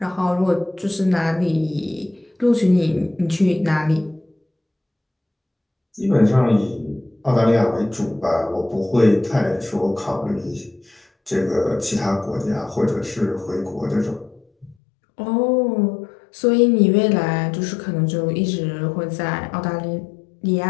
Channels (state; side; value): drops out; right; at 14.8 s